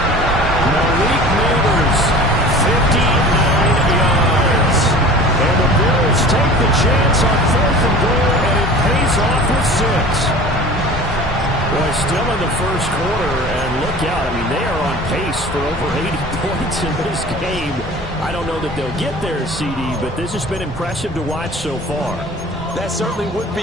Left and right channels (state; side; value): normal; both; correlation 0.41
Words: Malik Neighbors, 59 yards. And the Bills take the chance on 4th and goal, and it pays off with 6. Well, still in the first quarter, and look out. I mean, they are on pace for over 80 points in this game. I don't know that they'll get there, CD, but this has been impressive to watch so far. That certainly would be